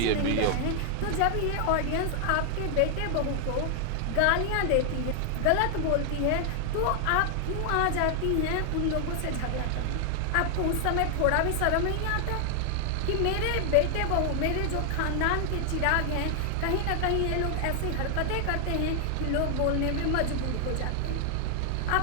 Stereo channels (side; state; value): both; different; correlation 0.00